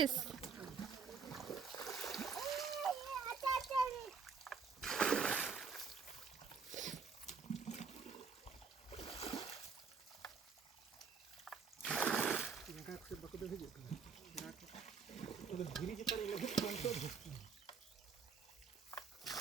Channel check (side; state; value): left; quieter; 5.5 dB